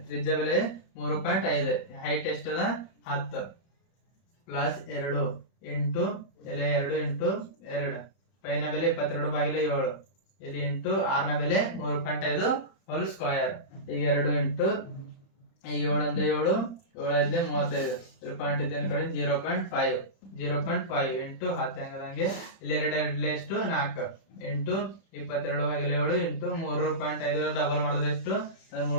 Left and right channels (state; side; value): late; right; 30 ms